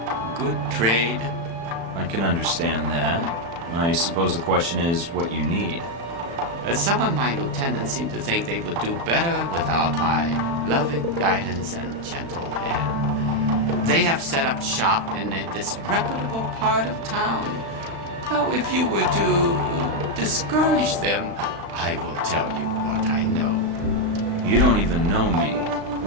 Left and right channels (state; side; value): late; left; 35 ms